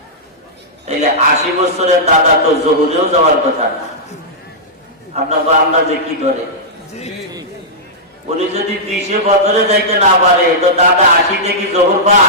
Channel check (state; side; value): normal; both; correlation -0.12